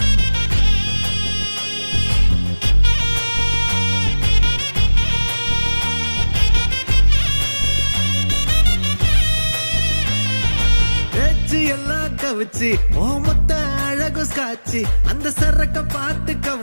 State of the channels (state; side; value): inverted; both; correlation -1.00